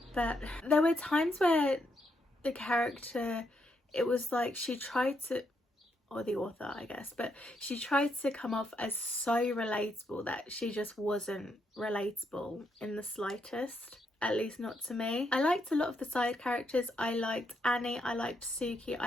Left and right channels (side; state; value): both; normal; correlation 0.78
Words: but there were times where the character, it was like she tried to, or the author I guess, but she tried to come off as so relatable that she just wasn't relatable in the slightest, at least not to me. I liked a lot of the side characters. I liked Annie, I liked Suki,